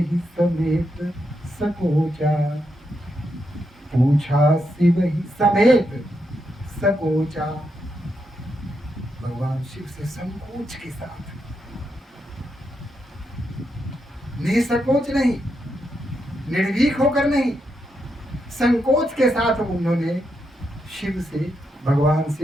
समेत सकोचा, पूछा सिवहि समेत सकोचा। भगवान शिव से संकोच के साथ, निसंकोच नहीं, निर्भीक होकर नहीं, संकोच के साथ उन्होंने शिव से, भगवान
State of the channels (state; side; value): normal; both; correlation 0.83